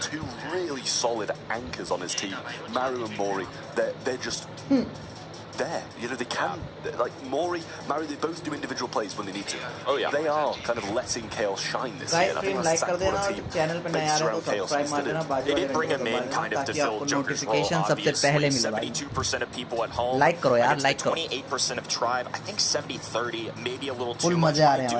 2 really solid anchors on his team, Maru and Mori. They're just there. You know, they can, like Mari, they both do individual plays when they need to. Oh yeah. They are kind of letting Chaos shine this year, and I think that's exactly what a team based around Chaos needs to do. They did bring him in kind of to fill Joker's role, obviously. 72% of people at home against the 28% of Tribe. I think 70-30, maybe a little too much. I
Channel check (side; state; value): both; identical; correlation 1.00